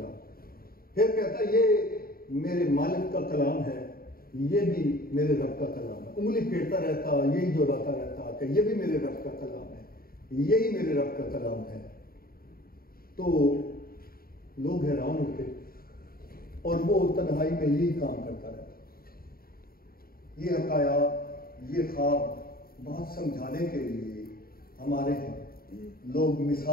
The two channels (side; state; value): right; late; 0.43 ms